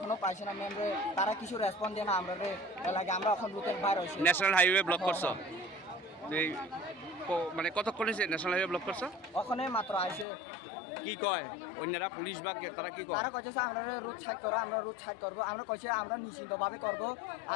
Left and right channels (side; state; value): right; drops out; at 10.2 s